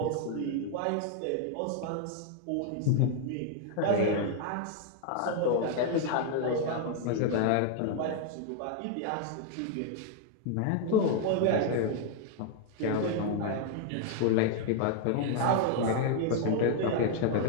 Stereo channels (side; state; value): both; different; correlation 0.00